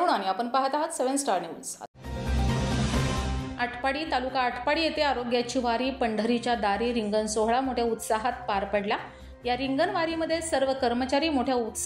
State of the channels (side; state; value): both; identical; correlation 1.00